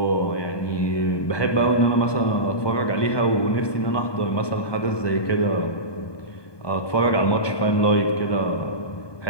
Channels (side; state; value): right; late; 1.2 ms